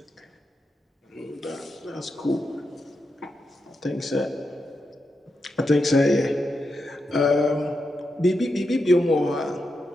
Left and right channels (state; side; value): normal; both; correlation 0.86